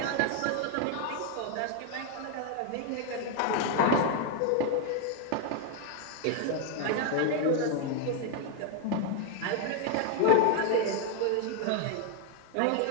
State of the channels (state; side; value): different; both; correlation 0.00